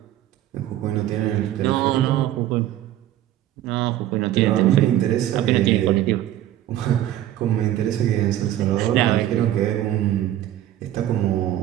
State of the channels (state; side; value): quieter; left; 12.9 dB